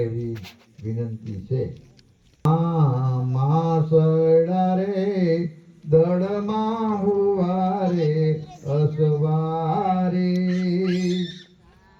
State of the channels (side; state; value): both; identical; correlation 1.00